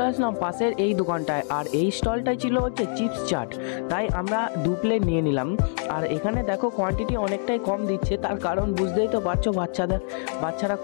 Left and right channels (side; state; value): right; silent; 62 dB below the other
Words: আসলাম পাশের এই দোকানটায়, আর এই স্টলটাই ছিল হচ্ছে চিপস চাট। তাই আমরা 2 প্লেট নিয়ে নিলাম। আর এখানে দেখো কোয়ান্টিটি অনেকটাই কম দিচ্ছে, তার কারণ বুঝতেই তো পারছো বাচ্চারা